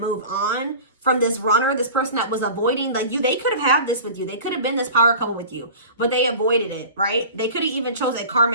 on from this runner, this person that was avoiding, like they could have had this with you. They could have been this power couple with you, but they avoided it, right? They could have even chose a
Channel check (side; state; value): both; inverted; correlation -0.38